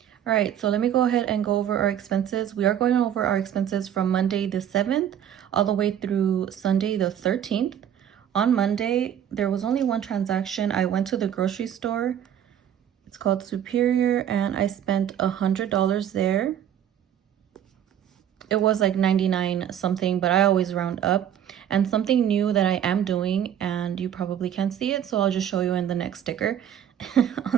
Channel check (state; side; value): quieter; left; 9.9 dB